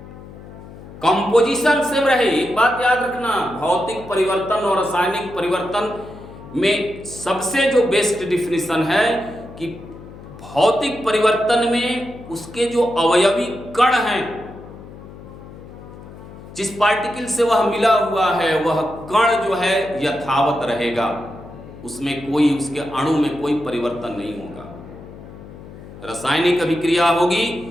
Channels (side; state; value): left; noise; hum, 16 dB below the sound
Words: कंपोजिशन सेम रहे, एक बात याद रखना, भौतिक परिवर्तन और रासायनिक परिवर्तन में सबसे जो बेस्ट डिफिनीशन है कि भौतिक परिवर्तन में उसके जो अवयवी कण हैं, जिस पार्टिकल से वह मिला हुआ है वह कण जो है यथावत रहेगा, उसमें कोई, उसके अणु में कोई परिवर्तन नहीं होगा। रासायनिक अभिक्रिया होगी